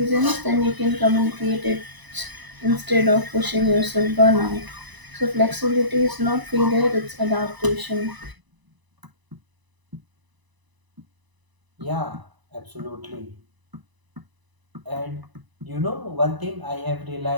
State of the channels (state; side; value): late; left; 1.0 ms